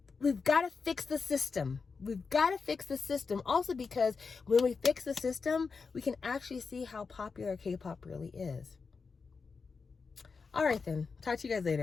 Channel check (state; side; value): quieter; right; 4.9 dB